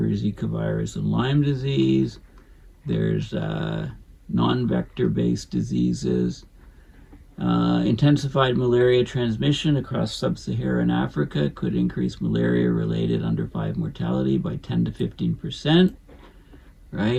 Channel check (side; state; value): both; identical; correlation 1.00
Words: Zika virus, and Lyme disease. There's non-vector-based diseases. Intensified malaria transmission across sub-Saharan Africa could increase malaria-related under 5 mortality by 10 to 15%,